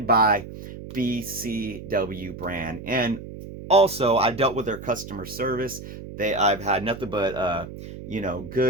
by BCW brand. And also, I dealt with their customer service. I've had nothing but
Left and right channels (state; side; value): noise; right; hum, 12 dB below the sound